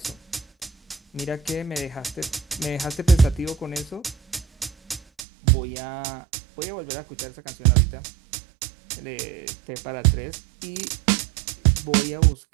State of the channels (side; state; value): left; drops out; at 5.2 s